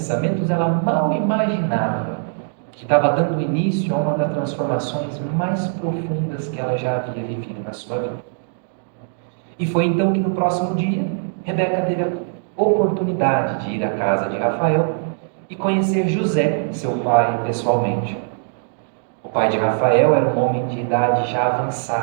ela mal imaginava que estava dando início a uma das transformações mais profundas que ela já havia vivido na sua vida. E foi então que no próximo dia, Rebeca teve a oportunidade de ir à casa de Rafael e conhecer José, seu pai, pessoalmente. O pai de Rafael era um homem de idade já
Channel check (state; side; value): silent; left; digital silence